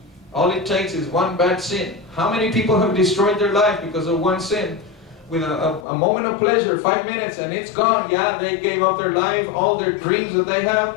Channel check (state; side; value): drops out; right; at 5.9 s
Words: All it takes is one bad sin. How many people have destroyed their life because of one sin? With a moment of pleasure, 5 minutes, and it's gone. Yeah, they gave up their life. All their dreams that they